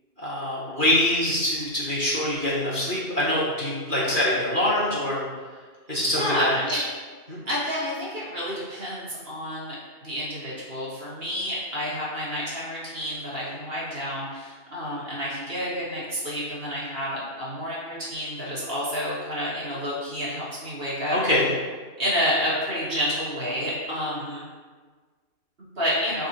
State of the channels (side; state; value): left; late; 2.4 ms